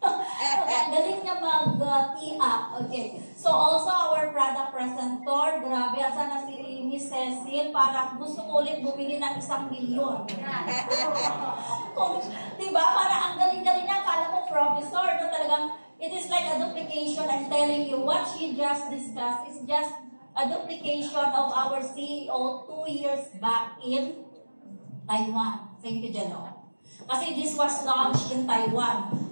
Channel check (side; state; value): both; inverted; correlation -1.00